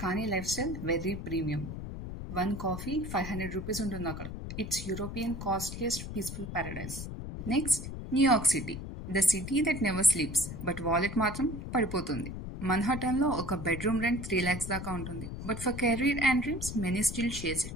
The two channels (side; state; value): left; noise; rumble, 8 dB below the sound